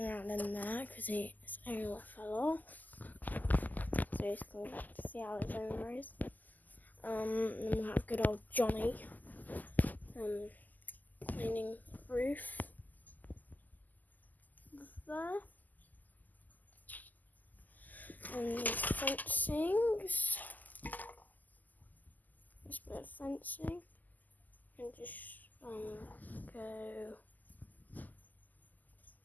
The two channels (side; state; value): right; late; 0.083 ms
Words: around in there because his area fell off. So he's going back to see how his owner is. And then we'll have good old Johnny cleaning roof there. And these fencings. This bit of fencing. And just go